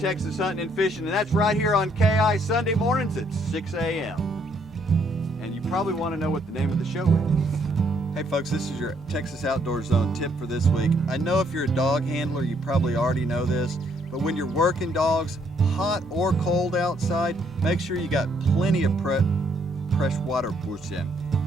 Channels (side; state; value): left; noise; hum, 24 dB below the sound